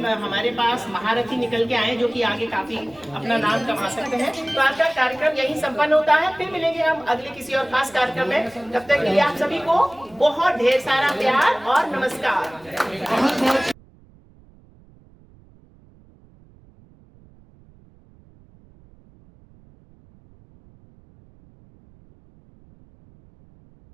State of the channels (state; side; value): noise; right; rumble, 27 dB below the sound